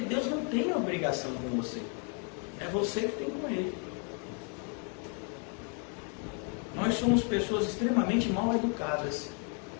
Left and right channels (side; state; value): right; quieter; 39.9 dB